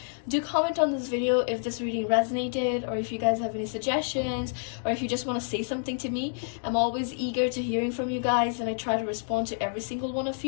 Do comment on this video if this reading resonated, or if you guys have any suggestions, or if you just want to say something to me. I'm always eager to hearing from you guys, and I try to respond to every single one of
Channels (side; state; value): right; silent; digital silence